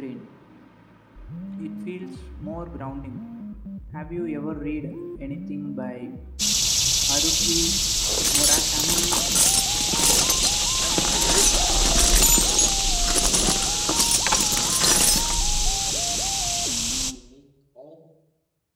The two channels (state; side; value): identical; both; correlation 1.00